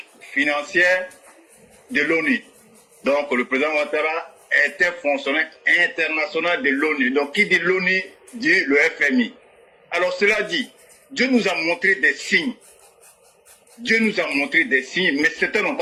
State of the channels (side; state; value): both; identical; correlation 1.00